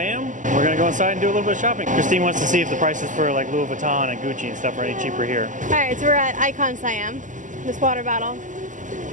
We're gonna go inside and do a little bit of shopping. Christine wants to see if the prices for like Louis Vuitton and Gucci and stuff are any cheaper here. All right, so we're at Icon Siam. This water bottle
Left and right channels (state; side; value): late; left; 0.37 ms